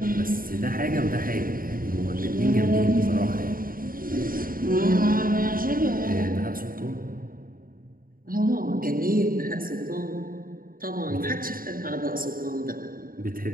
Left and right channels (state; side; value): late; left; 0.41 ms